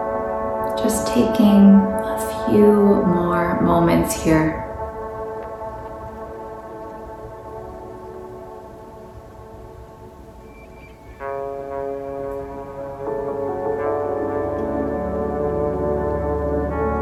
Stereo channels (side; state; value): both; identical; correlation 1.00